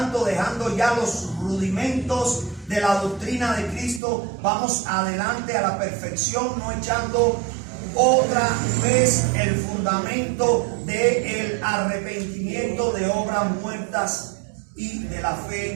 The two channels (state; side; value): drops out; left; at 4.0 s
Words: dejando ya los rudimentos de la doctrina de Cristo, vamos adelante a la perfección, no echando otra vez el fundamento del arrepentimiento de obras muertas y de la